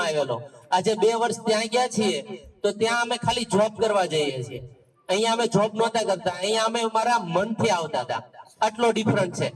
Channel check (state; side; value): identical; both; correlation 1.00